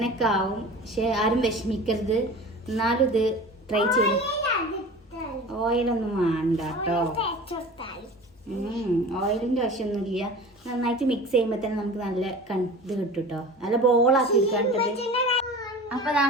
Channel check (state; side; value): normal; both; correlation 0.37